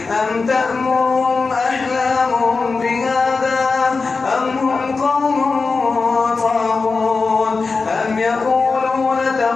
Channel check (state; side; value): quieter; right; 4.3 dB